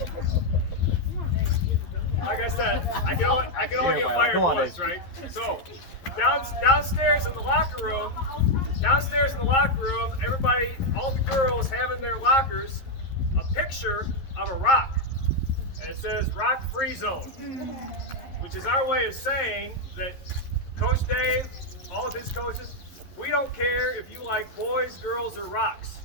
Like I said, I can only get fired once, right? So, downstairs in the locker room, everybody, all the girls have in their lockers a picture of a rock, and it says "Rock Free Zone," which is our way of saying that Coach Dave, all of his coaches, we don't care if you like boys, girls, or rocks.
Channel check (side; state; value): right; late; 11 ms